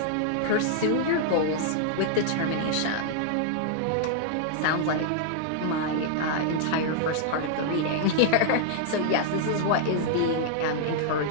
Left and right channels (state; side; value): different; both; correlation -0.01